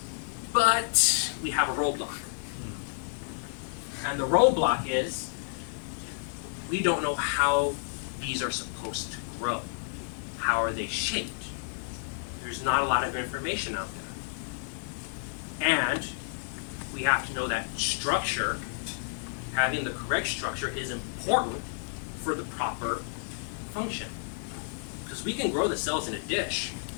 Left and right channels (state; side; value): silent; right; digital silence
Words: But we have a roadblock. And the roadblock is we don't know how these are supposed to grow. How are they shaped? There's not a lot of information out there. And we have to know that structure, having the correct structure, is important for the proper function. Because we can grow the cells in a dish,